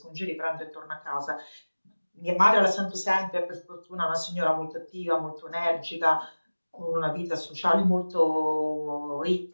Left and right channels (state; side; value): inverted; both; correlation -1.00